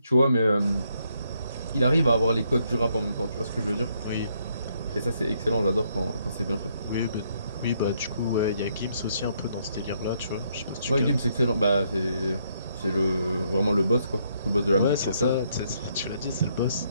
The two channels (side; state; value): both; inverted; correlation -0.73